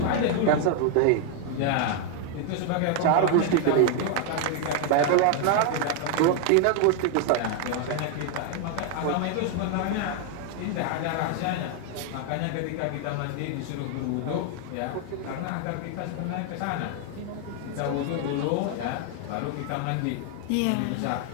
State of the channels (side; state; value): both; different; correlation 0.00